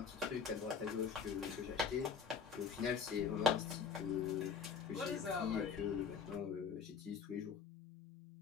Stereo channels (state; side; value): quieter; right; 6.2 dB